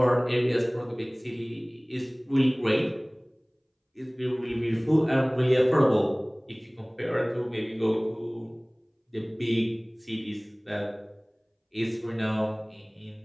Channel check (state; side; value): identical; both; correlation 1.00